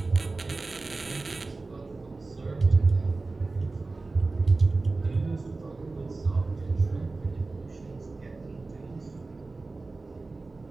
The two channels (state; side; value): quieter; left; 3.5 dB